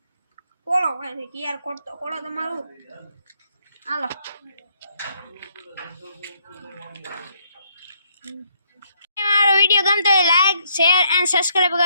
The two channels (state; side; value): inverted; both; correlation -0.72